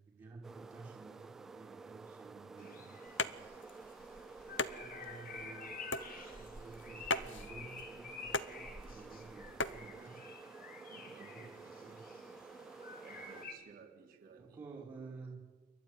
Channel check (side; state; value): both; normal; correlation -0.01